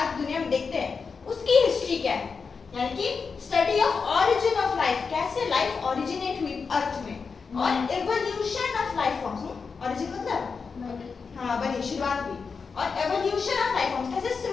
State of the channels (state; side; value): quieter; right; 5.2 dB